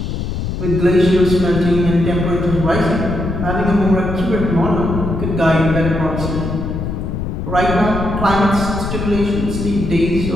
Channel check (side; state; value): left; noise; rumble, 4 dB below the sound